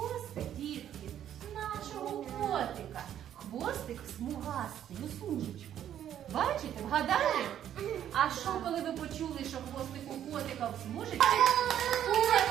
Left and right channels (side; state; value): left; quieter; 10.5 dB